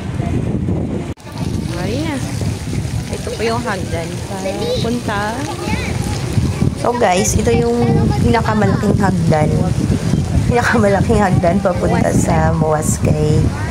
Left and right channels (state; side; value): identical; both; correlation 1.00